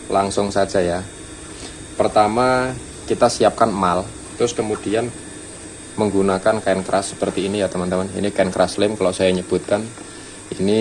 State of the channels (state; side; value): identical; both; correlation 1.00